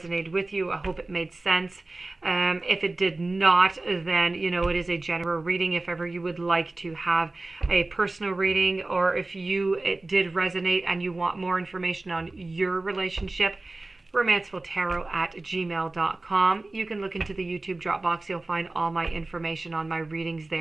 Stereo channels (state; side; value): quieter; left; 3.0 dB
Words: with you. I hope it made sense. If it did not, then, it is a general reading. If ever you would like to have a personal reading, or if it did resonate and you want more information on your relationship, romancefulltarot@gmail.com. You can look into the YouTube drop box. You'll find all my information on my readings